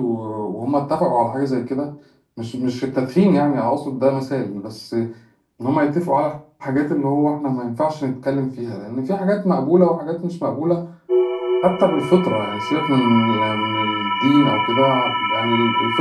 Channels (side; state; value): both; identical; correlation 1.00